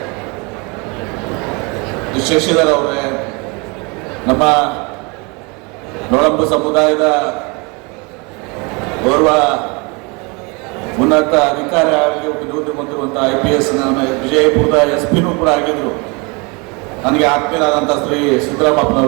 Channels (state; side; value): quieter; left; 29.5 dB